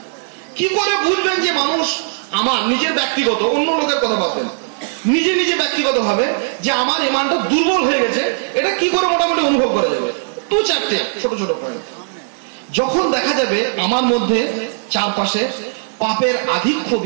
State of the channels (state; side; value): silent; left; digital silence